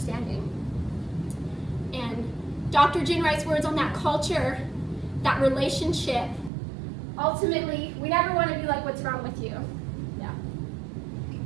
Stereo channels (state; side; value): drops out; left; at 6.5 s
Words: And Dr. Jen writes words on that culture, that relationship. Ultimately, we never want to be like, what's wrong with you? Yeah.